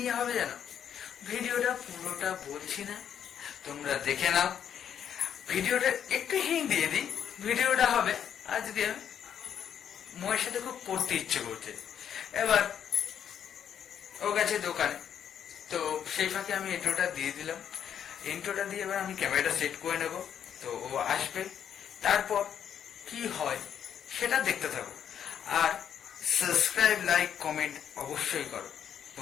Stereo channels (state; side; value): quieter; right; 8.9 dB